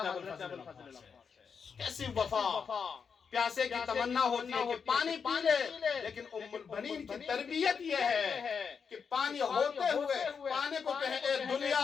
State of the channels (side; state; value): right; quieter; 6.2 dB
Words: ابو الفضل۔ کیسی وفا! پیاسے کی تمنا ہوتی ہے کہ پانی پی لے، لیکن ام البنین کی تربیت یہ ہے کہ پانی ہوتے ہوئے پانی کو کہے اے